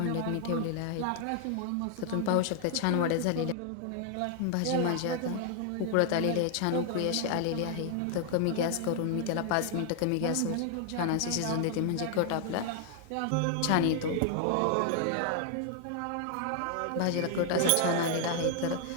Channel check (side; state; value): both; different; correlation 0.00